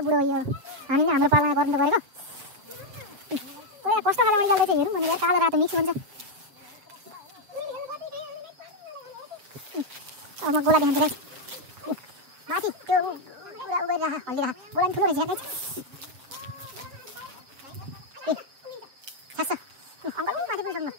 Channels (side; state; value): left; late; 7.5 ms